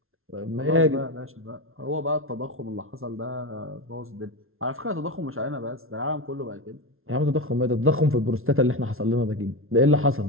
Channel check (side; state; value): left; late; 0.61 ms